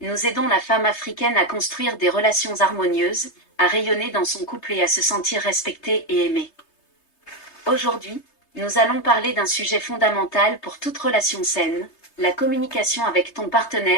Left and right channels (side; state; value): right; late; 3.3 ms